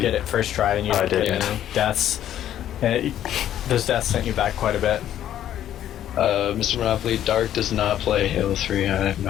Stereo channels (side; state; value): right; quieter; 11.4 dB